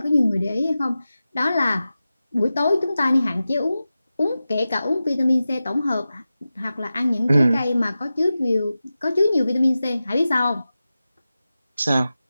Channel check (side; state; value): both; inverted; correlation -0.94